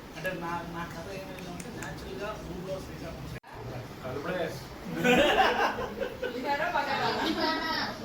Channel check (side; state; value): both; identical; correlation 1.00